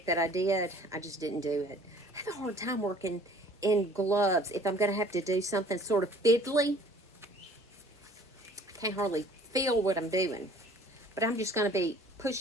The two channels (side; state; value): both; normal; correlation 0.52